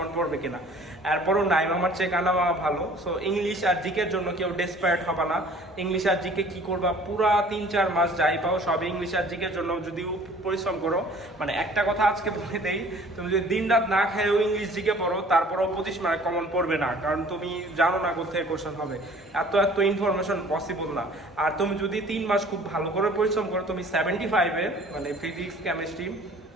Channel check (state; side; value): normal; both; correlation 0.51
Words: পড়বে কিনা। এরপরও নাইম আমার চেয়ে কানা মামা ভালো। সো ইংলিশ আর জিকের জন্য কেউ ডেসপায়ার্ড হবে না। ইংলিশ আর জিকে কি করবা, পুরা 3-4 মাস যাই পাও সব ইংলিশ আর জিকের জন্য যদি পরিশ্রম করো। মানে একটা কথা আজকে বলে দেই, তুমি যদি দিন রাত না খেয়েও ইংলিশ জিকে পড়ো, তারপরেও 25 মার্ক কমন পড়বে না, কারণ তুমি জানো না কোথায় কোশ্চেন হবে। এত ইনফরমেশন পসিবল না। আর তুমি যদি 3 মাস খুব ভালো করে পরিশ্রম করো, তুমি 75-এ মানে ফিজিক্স, কেমিস্ট্রি,